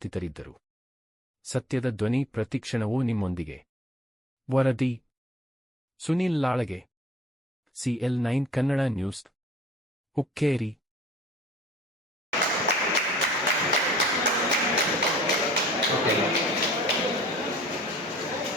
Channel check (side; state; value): both; normal; correlation 0.49